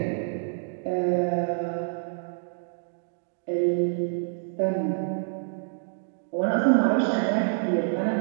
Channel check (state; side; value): silent; left; digital silence